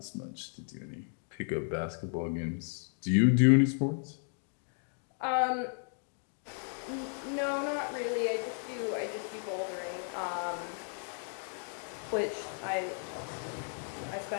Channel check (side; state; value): right; silent; 55 dB below the other